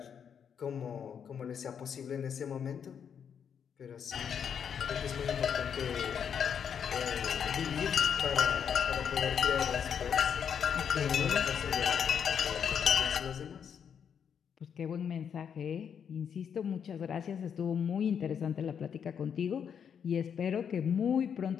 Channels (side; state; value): right; quieter; 7.6 dB